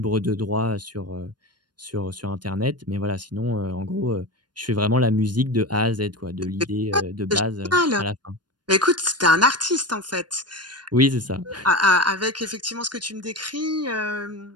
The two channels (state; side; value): late; left; 0.70 ms